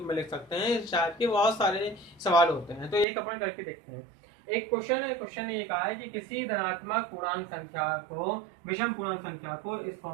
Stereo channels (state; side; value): drops out; left; at 3.1 s